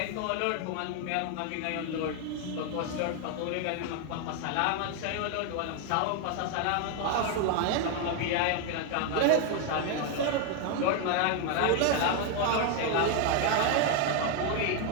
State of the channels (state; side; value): different; both; correlation 0.01